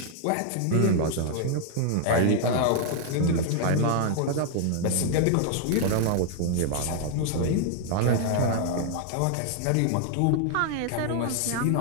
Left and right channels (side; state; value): both; different; correlation 0.00